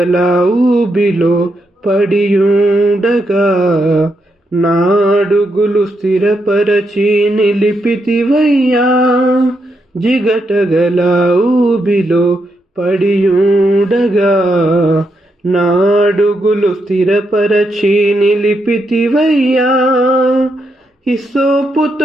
ఊబిలో పడియుండగా నాడుగులు స్థిరపరచి నిలిపితివయ్యా జిగటగల ఊబిలో పడియుండగా నాడుగులు స్థిరపరచి నిలిపితివయ్యా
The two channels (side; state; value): both; normal; correlation 0.81